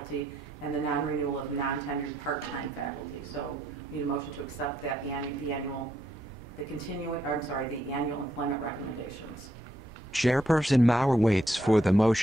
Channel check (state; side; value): normal; both; correlation 0.76